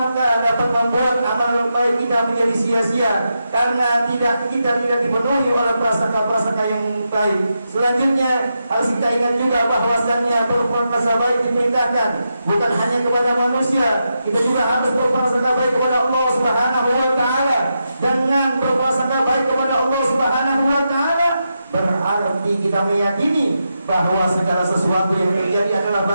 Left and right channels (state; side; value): inverted; both; correlation -0.86